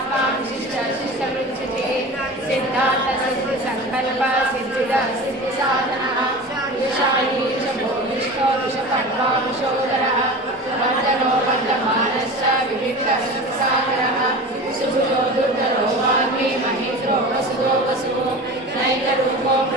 विशिष्टशिष्टवृक्षिते सिद्धान्तसिद्धिसङ्कल्प सिद्धिसाधनः विशायी च भूमिष्ठो विषपर्वांशोदरः वर्धनो वर्धमानश्च विविक्तसागरः सुभुजो दुर्धरो वाग्मी महेन्द्रो वसुदो वसुः नैकरूपो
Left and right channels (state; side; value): normal; both; correlation 0.33